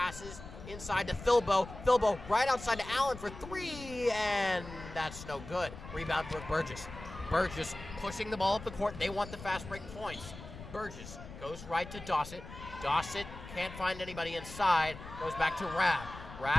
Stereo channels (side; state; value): left; noise; rumble, 13 dB below the sound